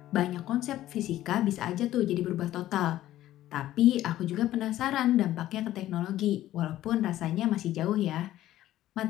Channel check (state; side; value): quieter; right; 14.0 dB